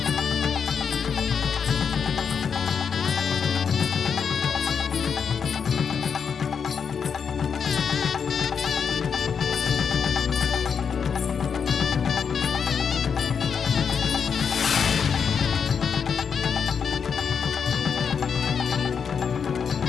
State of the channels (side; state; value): right; quieter; 6.6 dB